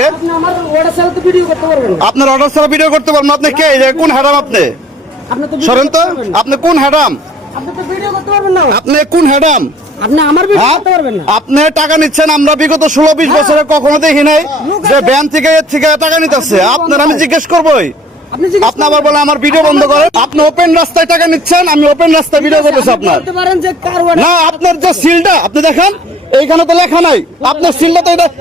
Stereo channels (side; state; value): both; normal; correlation 0.55